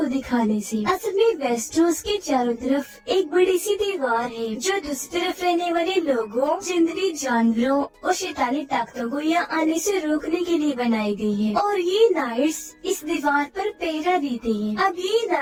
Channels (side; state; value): both; identical; correlation 1.00